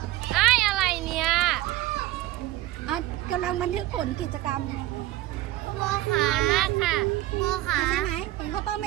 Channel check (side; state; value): left; quieter; 16.1 dB